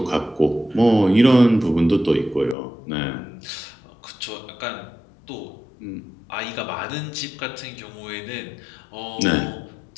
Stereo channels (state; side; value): drops out; right; at 2.6 s